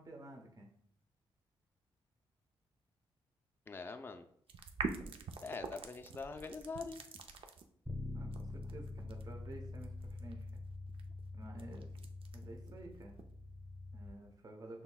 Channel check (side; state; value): both; normal; correlation 0.67